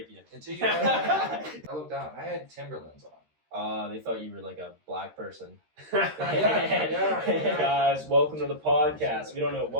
you. Until you. I looked down. I had Timberlands on. They thought you were like a black person. Yeah. Guys, welcome to the podcast. We don't know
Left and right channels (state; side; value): late; left; 13 ms